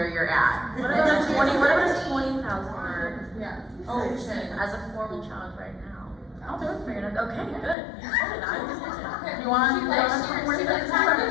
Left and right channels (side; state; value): right; drops out; at 7.8 s